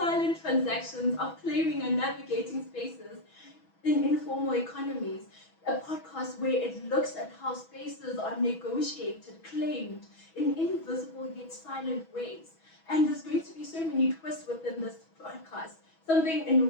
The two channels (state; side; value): late; right; 6.2 ms